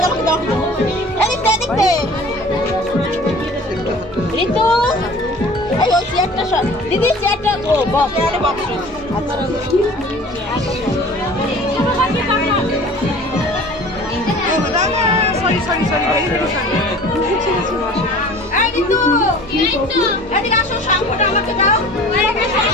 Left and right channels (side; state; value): both; normal; correlation 0.44